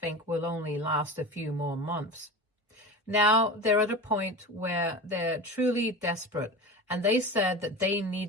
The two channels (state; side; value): normal; both; correlation 0.29